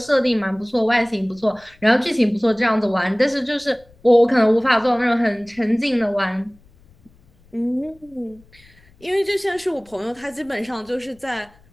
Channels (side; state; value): left; noise; rumble, 29 dB below the sound